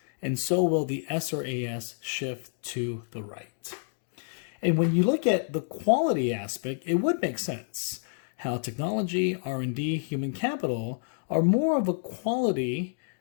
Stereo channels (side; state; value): right; silent; digital silence